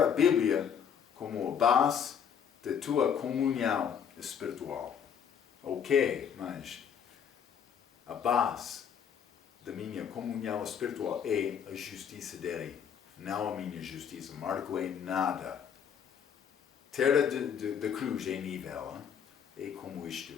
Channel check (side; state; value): right; quieter; 7.9 dB